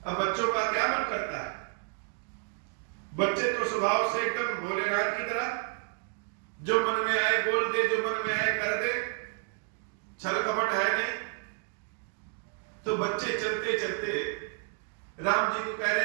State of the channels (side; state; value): left; quieter; 38.5 dB